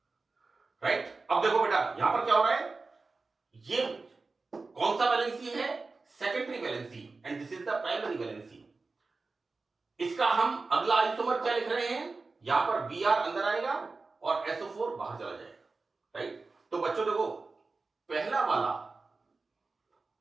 राइट। अब देखो बेटा यहां पर क्या हो रहा है, ये कौन सा वैलेंसी है, secondary valency, and this is the primary valency. इसका हम अगला आइसोमर क्या लिख रहे हैं, यहां पर Br अंदर आएगा और SO4 बाहर चला जाएगा, राइट। तो बच्चों देखो पहला वाला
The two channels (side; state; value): left; quieter; 3.9 dB